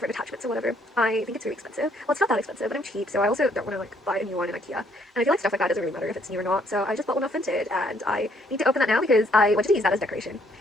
attachments or whatever. I think it's really expensive. Well, it's not that expensive, but I'm cheap, so I also don't want to like buy a new one in IKEA. And I feel like stuff like that doesn't really matter if it's new or not. So I just bought one off Vinted, and I need to open that now because I wanted to use that as decoration.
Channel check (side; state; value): both; normal; correlation 0.67